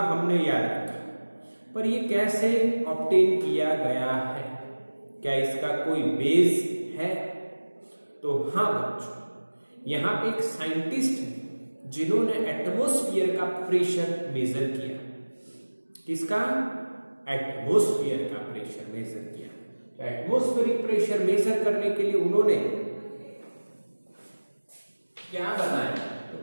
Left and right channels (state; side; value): inverted; both; correlation -1.00